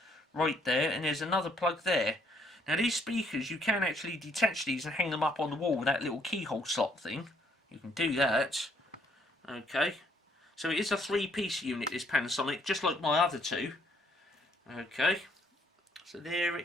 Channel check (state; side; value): normal; both; correlation 0.67